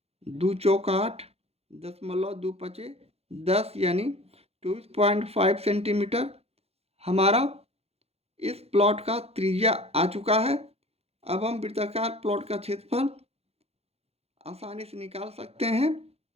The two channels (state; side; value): late; left; 0.29 ms